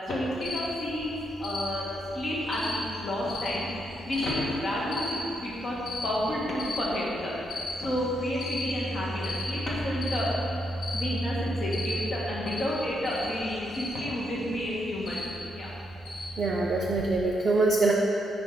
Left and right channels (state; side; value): normal; both; correlation 0.79